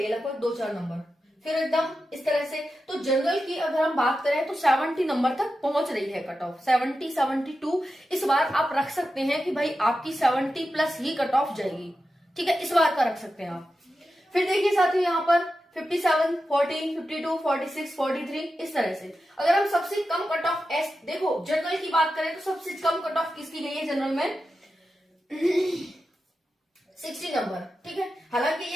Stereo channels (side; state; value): both; normal; correlation 0.91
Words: है लगभग 2-4 नंबर, फिर एकदम इस तरह से। तो जनरल की अगर हम बात करें तो 70 नंबर तक पहुंच रही है कट ऑफ, 70, 72 इस बार आप रख सकते हैं कि भाई आपकी 70 प्लस ही कट ऑफ जाएगी। ठीक है, इस बार का रख सकते हैं आप। फिर देखिए साथियों यहाँ पर 57, 40, 52, 46, 43 इस तरह से। अगर हम सबसे कम कट ऑफ देखो जनरल की बात करें तो सबसे कम कट ऑफ किसकी गई है जनरल में 60 नंबर, ठीक है। हालांकि